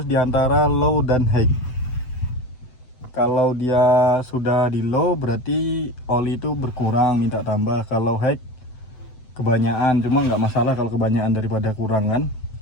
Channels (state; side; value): late; right; 7.9 ms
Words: diantara low dan high. Kalau dia sudah di low berarti oli itu berkurang, minta tambah. Kalau high kebanyakan, cuma nggak masalah kalau kebanyakan daripada kurang kan.